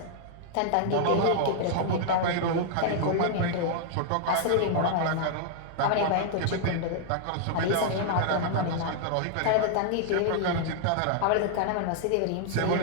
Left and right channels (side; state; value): both; different; correlation -0.01